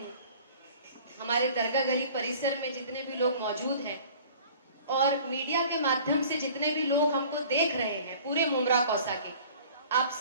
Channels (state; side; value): inverted; both; correlation -0.48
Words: हमारे दरगाह गली परिसर में जितने भी लोग मौजूद हैं और मीडिया के माध्यम से जितने भी लोग हमको देख रहे हैं पूरे मुमरा कौसा के, आप